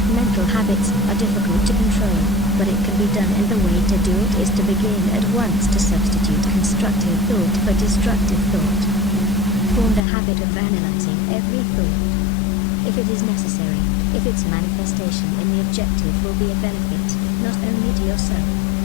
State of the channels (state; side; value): drops out; right; at 10.0 s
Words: Mental habits are difficult to control, but it can be done, and the way to do it is to begin at once to substitute constructive thought for destructive thought. Form the habit of analyzing every thought. If it is necessary, if its manifestation in the objective will be a benefit, not only to yourself,